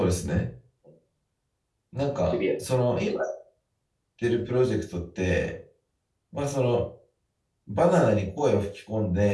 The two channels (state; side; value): identical; both; correlation 1.00